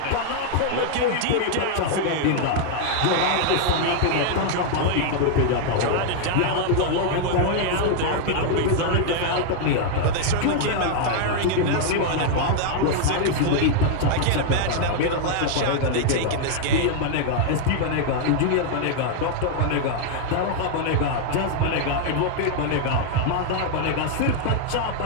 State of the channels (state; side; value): different; both; correlation 0.00